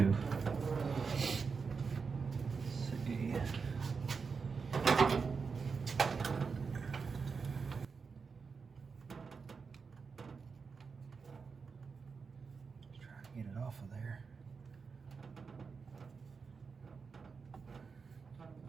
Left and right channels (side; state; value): left; quieter; 5.2 dB